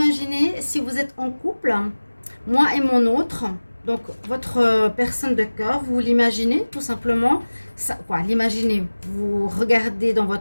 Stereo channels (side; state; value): both; inverted; correlation -1.00